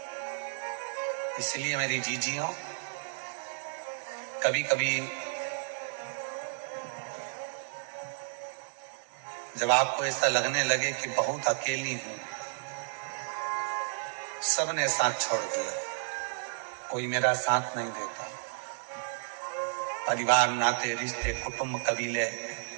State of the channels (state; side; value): silent; left; digital silence